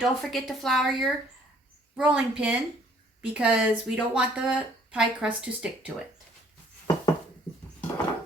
forget to flour your rolling pin because we don't want the pie crust to stick to it.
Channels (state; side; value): normal; both; correlation 0.60